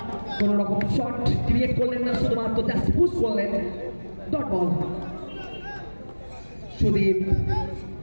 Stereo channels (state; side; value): inverted; both; correlation -1.00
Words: কোন রকম শট ক্রিয়েট করলেন না, শুধুমাত্র জাস্ট পুশ করলেন। ডট বল সুদীপ